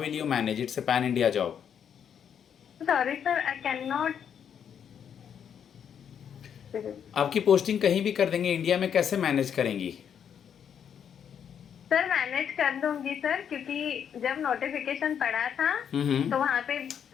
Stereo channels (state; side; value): quieter; right; 8.2 dB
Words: you manage? It's a pan-India job. Sorry sir I can not. आपकी posting कहीं भी कर देंगे India में, कैसे manage करेंगी? Sir manage कर लूंगी सर, क्योंकि जब नोटिफिकेशन पड़ा था हम्म। तो वहाँ पे